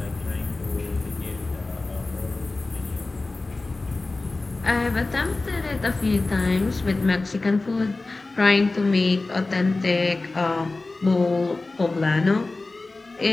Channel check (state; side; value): quieter; right; 3.3 dB